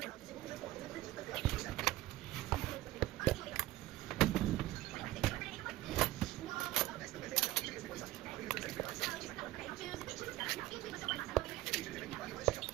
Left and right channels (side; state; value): left; quieter; 16.3 dB